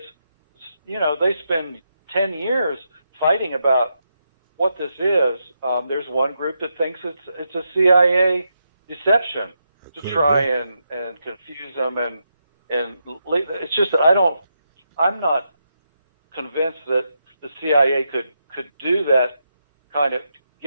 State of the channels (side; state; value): both; inverted; correlation -0.83